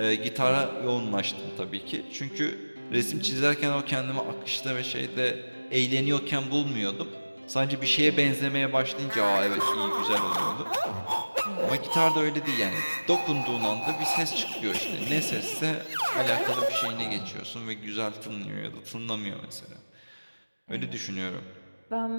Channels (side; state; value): both; inverted; correlation -1.00